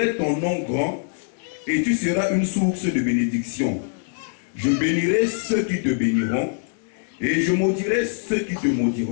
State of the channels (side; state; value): right; silent; digital silence